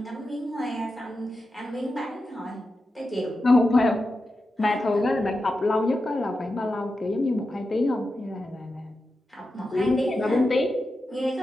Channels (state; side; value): normal; both; correlation 0.90